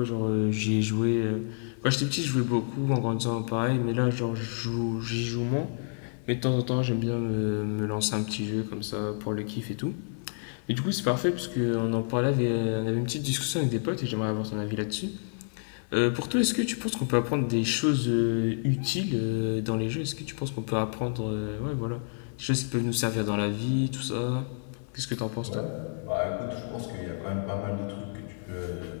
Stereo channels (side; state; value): right; silent; digital silence